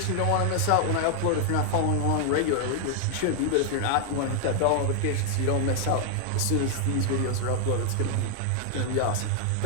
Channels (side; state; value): both; different; correlation 0.00